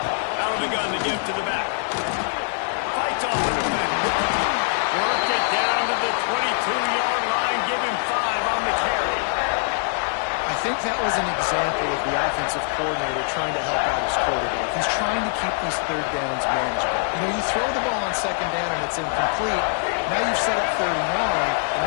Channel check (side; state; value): right; silent; 63 dB below the other